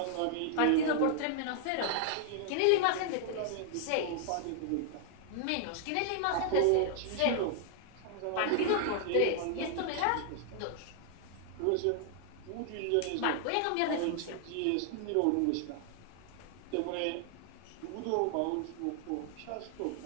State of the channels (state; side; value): different; both; correlation 0.00